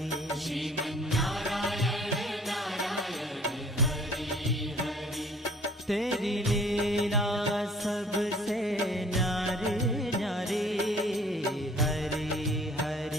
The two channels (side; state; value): both; normal; correlation 0.54